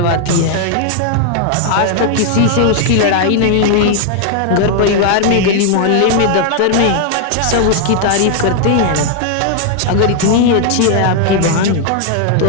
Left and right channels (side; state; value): both; different; correlation 0.00